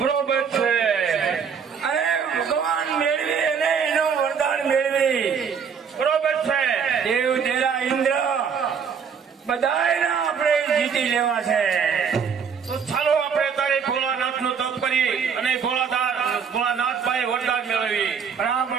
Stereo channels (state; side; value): quieter; left; 6.6 dB